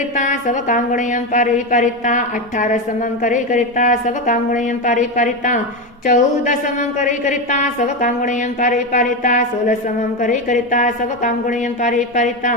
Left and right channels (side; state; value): both; normal; correlation 0.14